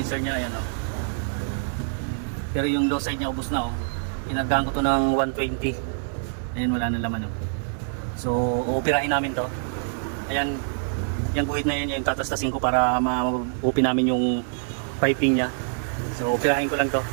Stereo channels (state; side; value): silent; left; digital silence